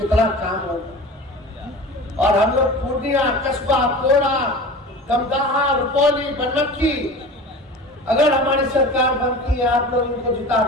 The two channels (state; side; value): normal; both; correlation 0.35